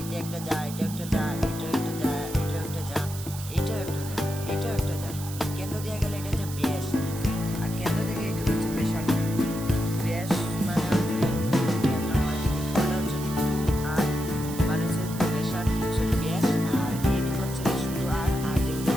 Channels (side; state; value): right; noise; hiss, 12 dB below the sound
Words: এটা একটা যা, এটা একটা যা, এটা একটা যা, এটা একটা যা, এটাও একটা যা, এটাও একটা যা, কেন্দ্র দেওয়া গেলে এটা হচ্ছে ব্যাস, আর কেন্দ্র থেকে এইটুকু হচ্ছে ব্যাসার্ধ। ব্যাস মানে হচ্ছে কেন্দ্র হয়, এটা হচ্ছে 2r, মানে হচ্ছে ব্যাসার্ধ হচ্ছে ব্যাস, আর এইটুকু হচ্ছে শুধু আর যেগুলো